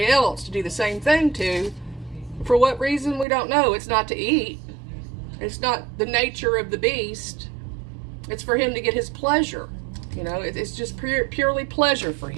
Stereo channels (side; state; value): left; drops out; at 3.2 s